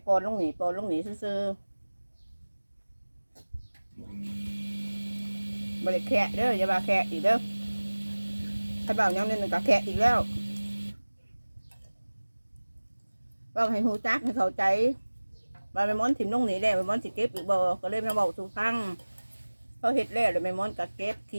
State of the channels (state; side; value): inverted; both; correlation -1.00